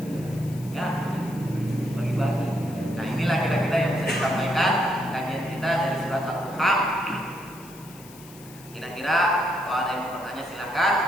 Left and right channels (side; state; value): left; noise; hiss, 20 dB below the sound